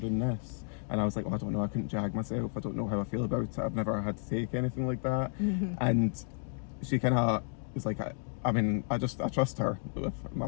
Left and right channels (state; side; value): silent; right; 56 dB below the other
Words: doing this, and I was like, well, I don't know, I couldn't jag myself, I don't know how I feel about it, I've never had to take anything like that, and she kind of was like, I mean, I trust her with my